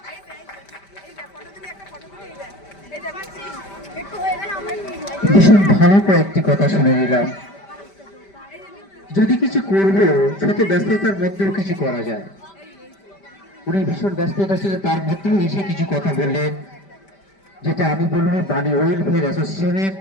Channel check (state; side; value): late; right; 5.1 ms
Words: ভীষণ ভালো কয়েকটি কথা শুনে নিলাম। যদি কিছু করবো শত ব্যস্ততার মধ্যেও কিছু করা যায়। উনি ভীষণ ব্যস্ততা ছিল, তার মধ্যেও এসে কিছু কথা বললেন, যেটা আমি বলবো বাণী ওয়েলফেয়ার অ্যাসোসিয়েশনের